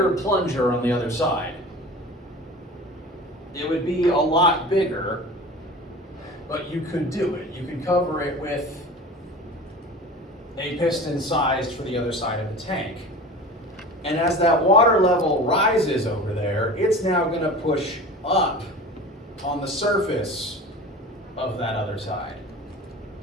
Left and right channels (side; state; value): both; normal; correlation 0.36